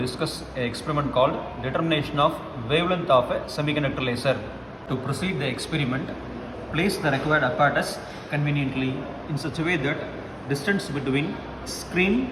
an experiment called determination of wavelength of a semiconductor laser. To proceed the experiment, place the required apparatus conveniently in such a way that distance between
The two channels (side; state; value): both; identical; correlation 1.00